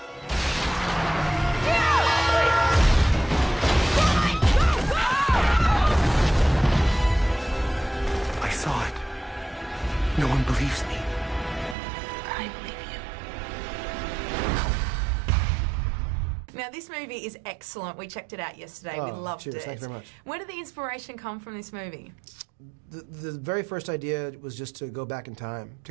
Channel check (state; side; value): drops out; left; at 11.8 s